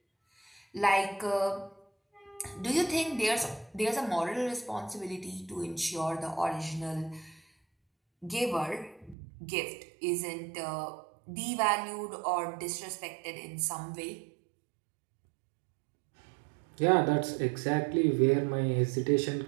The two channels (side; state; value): left; drops out; at 9.2 s